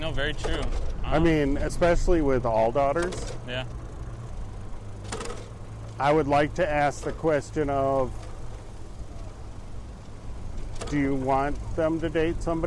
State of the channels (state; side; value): identical; both; correlation 1.00